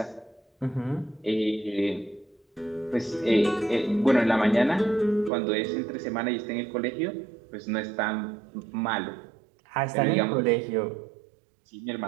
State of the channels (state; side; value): drops out; left; at 5.3 s